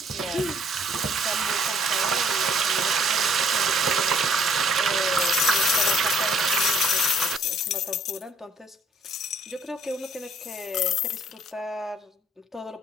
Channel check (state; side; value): normal; both; correlation 0.60